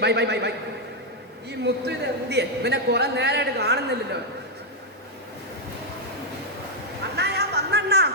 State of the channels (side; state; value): both; normal; correlation 0.00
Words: ബൈ ബൈ ബൈ ബൈ. ഈ മുത്തു ഇത് എന്തിയെ? പിന്നെ കുറെ നേരമായിട്ട് കാണുന്നില്ലല്ലോ.